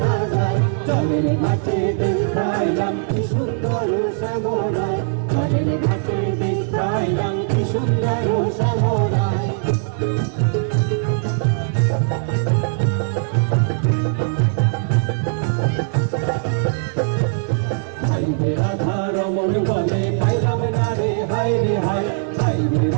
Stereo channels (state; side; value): silent; left; digital silence